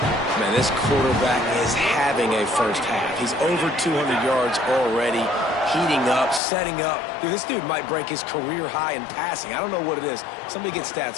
Man, this quarterback is having a first half. He's over 200 yards already. Heating up, setting up. Dude, this dude might break his career high in passing. I don't know what it is. Somebody get stats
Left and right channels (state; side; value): drops out; right; at 6.4 s